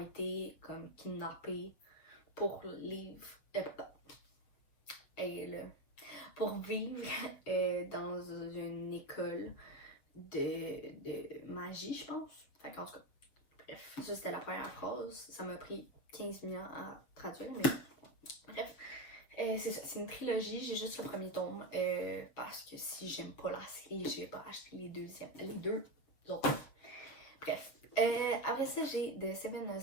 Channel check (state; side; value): late; right; 7.2 ms